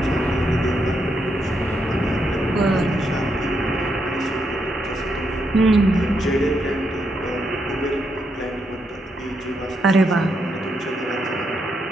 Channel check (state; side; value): normal; both; correlation 0.80